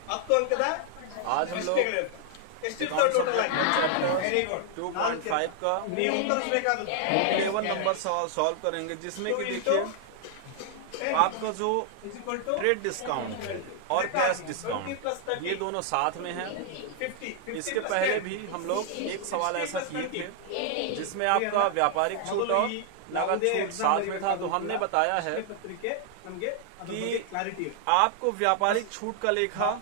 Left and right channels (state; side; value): different; both; correlation 0.00